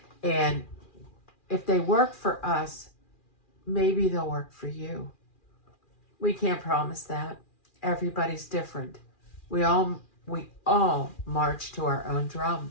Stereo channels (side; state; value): right; late; 2.4 ms